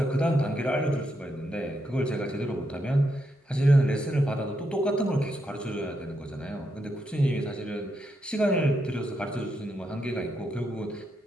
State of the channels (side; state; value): both; normal; correlation 0.81